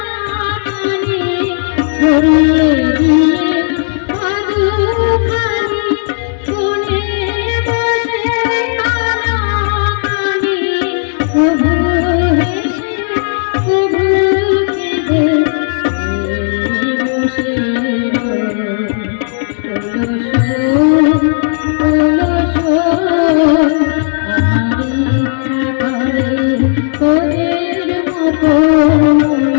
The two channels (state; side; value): silent; right; digital silence